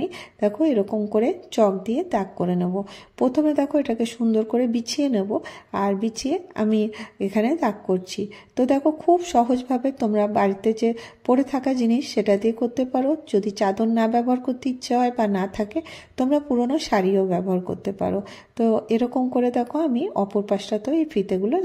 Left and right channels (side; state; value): both; identical; correlation 1.00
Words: দেখো এরকম করে চক দিয়ে দাগ করে নেব। প্রথমে দেখো এটাকে সুন্দর করে বিছিয়ে নেব আর বিছিয়ে আমি এখানে দাগ করছি। তো দেখো খুব সহজভাবে তোমরা বাড়িতে যে পড়ে থাকা জিনিস সেটা দিয়ে করতে পারো। যদি চাদর না ব্যবহার করতে ইচ্ছে হয় বা না থাকে, তোমরা পুরনো শাড়িও ব্যবহার করতে পারো। তো এরকম করে দেখো আমি অপর পাশটাতেও এই ফিতেগুলো